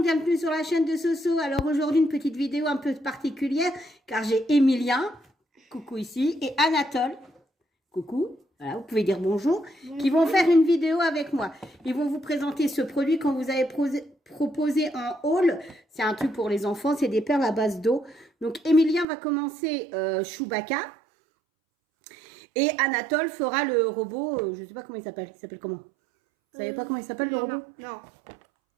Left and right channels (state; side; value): drops out; left; at 19.1 s